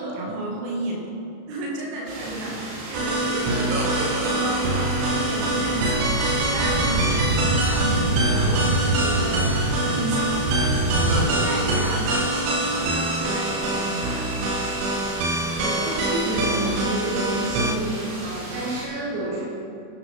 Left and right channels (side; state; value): left; late; 36 ms